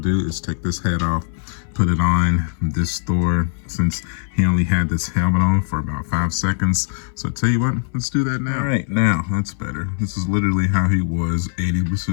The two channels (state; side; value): silent; right; 59 dB below the other